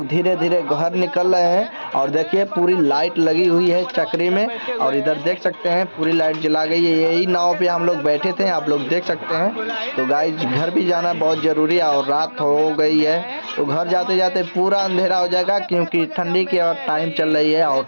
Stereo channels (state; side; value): inverted; both; correlation -1.00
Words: धीरे धीरे घर निकल रहे हैं। और देखिए पूरी लाइट लगी हुई है चक्री में, और इधर देख सकते हैं पूरी लाइट जला गई है। यही नाव पे हम लोग बैठे थे, आप लोग देख सकते हैं। तो गाइस घर भी जाना बहुत जरूरी है, और रात हो गई है, तो घर जाते जाते पूरा अंधेरा हो जाएगा, क्योंकि ठंडी की टाइम चल रही है और